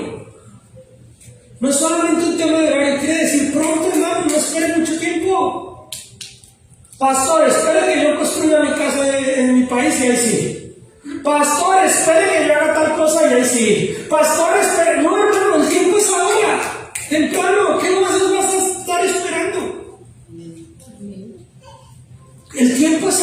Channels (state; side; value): identical; both; correlation 1.00